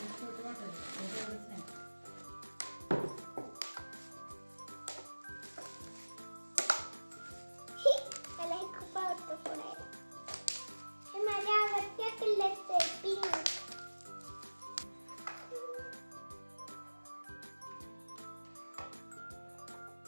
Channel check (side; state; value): both; inverted; correlation -1.00